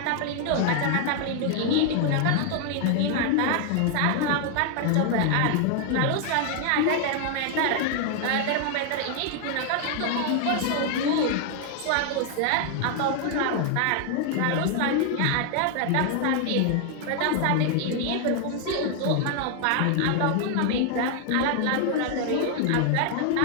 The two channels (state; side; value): different; both; correlation 0.00